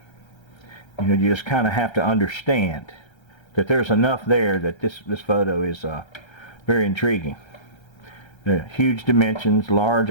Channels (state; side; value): late; right; 1.3 ms